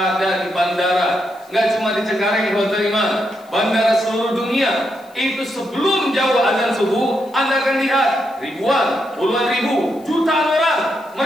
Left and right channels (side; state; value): left; noise; hiss, 29 dB below the sound